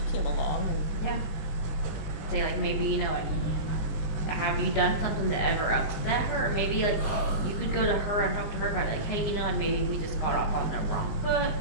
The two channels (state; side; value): late; right; 19 ms